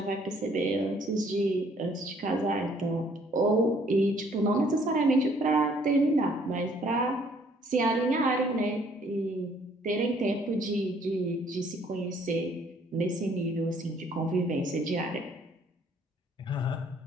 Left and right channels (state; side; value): normal; both; correlation 0.62